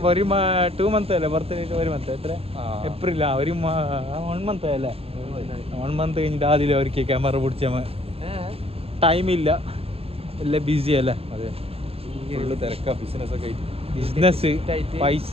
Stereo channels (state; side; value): late; left; 0.28 ms